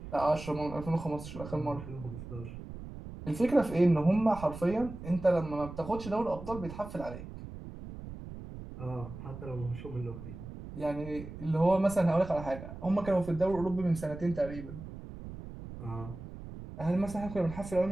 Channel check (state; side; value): noise; right; rumble, 12 dB below the sound